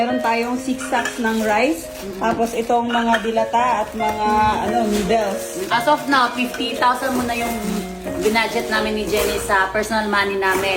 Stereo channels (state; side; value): identical; both; correlation 1.00